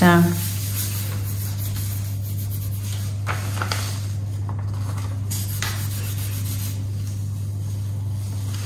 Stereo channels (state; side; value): identical; both; correlation 1.00